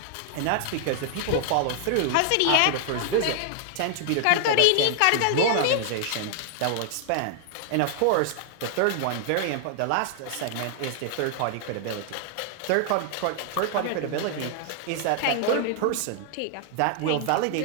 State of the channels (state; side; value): different; both; correlation 0.00